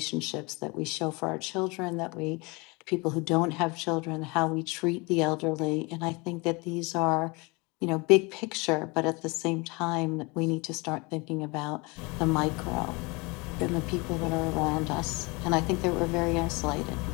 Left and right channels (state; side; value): quieter; right; 27.0 dB